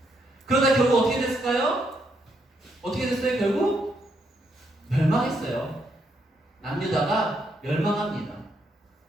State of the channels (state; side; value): normal; both; correlation 0.76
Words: 그러다 결국 어떻게 됐을까요? 어떻게 됐어요? 결국 멸망했어요. 남유다가 멸망합니다.